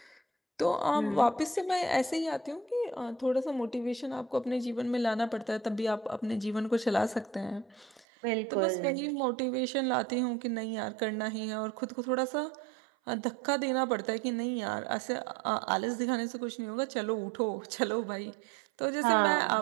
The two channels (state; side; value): drops out; left; at 8.1 s